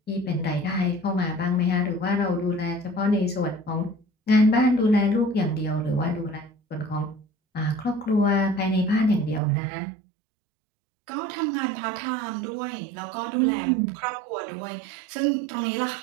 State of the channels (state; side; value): drops out; left; at 9.4 s